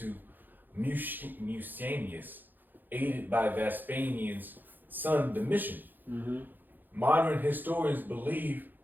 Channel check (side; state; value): left; late; 0.088 ms